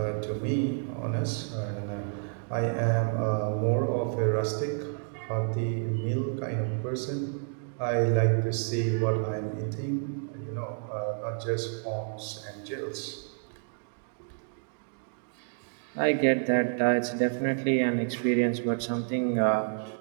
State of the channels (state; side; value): silent; left; 58 dB below the other